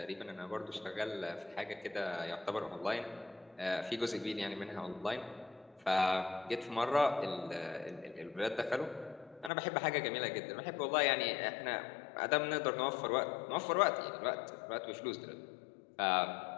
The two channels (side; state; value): right; drops out; at 9.5 s